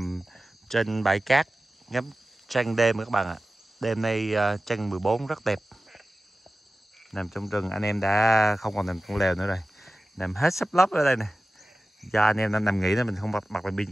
trên bãi cát ngắm trăng đêm các bạn ạ. Đêm nay trăng 14 rất đẹp. Nằm trong rừng anh em đã không còn nằm trong lều nữa rồi. Nằm hết sắp lấp ở đây nè. Do anh em nằm nghỉ nên mình không bật đèn pin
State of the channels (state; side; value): normal; both; correlation 0.95